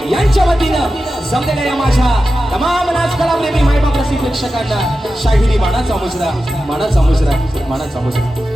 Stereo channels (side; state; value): both; normal; correlation 0.92